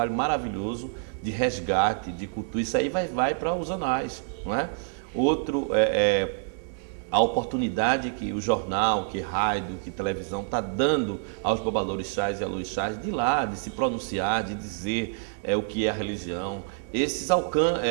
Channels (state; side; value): silent; left; 60 dB below the other